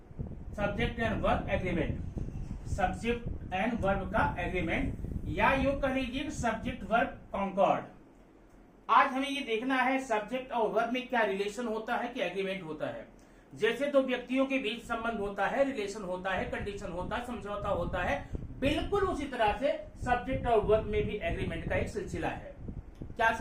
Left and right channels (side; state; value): both; identical; correlation 1.00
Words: and verb agreement. Subject and verb का एग्रीमेंट, या यूं कह लीजिए सब्जेक्ट वर्ब कॉन्कॉर्ड। आज हमें ये देखना है सब्जेक्ट और वर्ब में क्या रिलेशन होता है, क्या एग्रीमेंट होता है। जैसे दो व्यक्तियों के बीच संबंध होता है, रिलेशन होता है, कंडीशन होता है, समझौता होता है, बिल्कुल उसी तरह से सब्जेक्ट और वर्ब में भी एग्रीमेंट का एक सिलसिला है। क्या